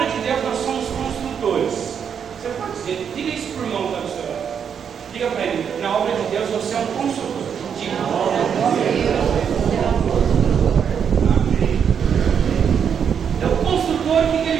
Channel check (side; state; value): left; quieter; 7.5 dB